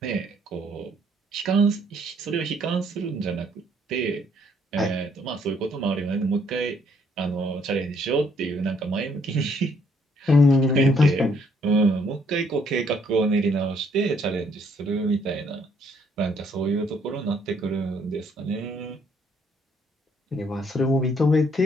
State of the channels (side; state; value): both; normal; correlation 0.67